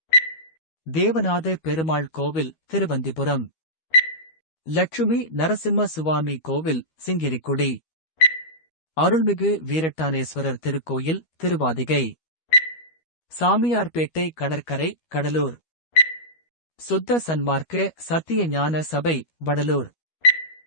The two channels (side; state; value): right; late; 13 ms